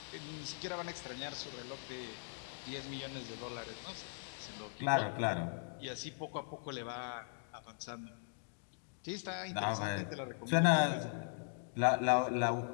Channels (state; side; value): silent; right; digital silence